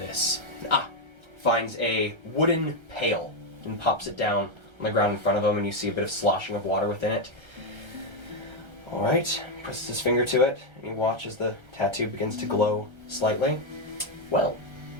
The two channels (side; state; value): left; late; 1.3 ms